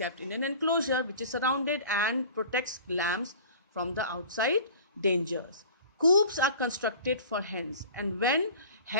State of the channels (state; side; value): inverted; both; correlation -0.42